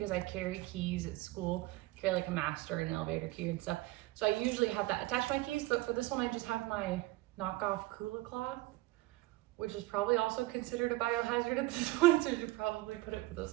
I carry keys at school, carry like a master and an elevator key and stuff. So I usually have that attached to my keys, but for this one, I just have my knockoff Kula cloth, which is probably also considered a biohazard at this point, so you should probably put it with those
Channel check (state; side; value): quieter; left; 19.3 dB